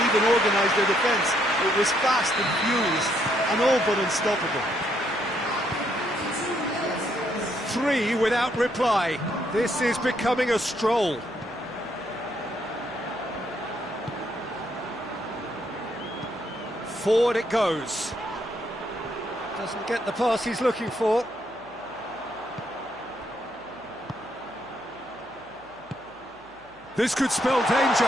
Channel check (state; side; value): noise; right; hum, 29 dB below the sound